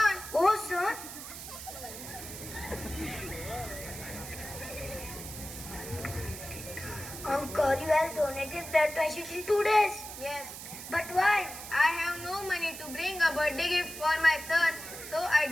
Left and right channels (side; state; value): right; noise; hiss, 11 dB below the sound